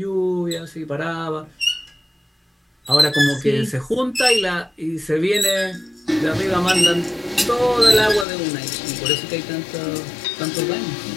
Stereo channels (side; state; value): right; drops out; at 8.2 s